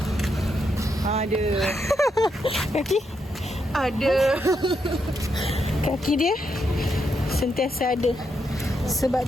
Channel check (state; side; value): normal; both; correlation 0.81